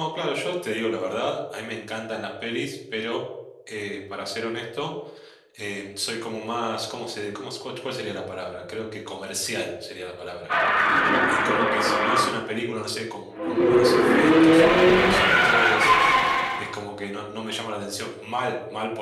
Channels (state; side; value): identical; both; correlation 1.00